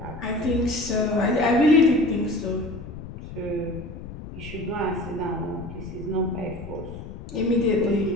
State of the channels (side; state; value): left; noise; rumble, 12 dB below the sound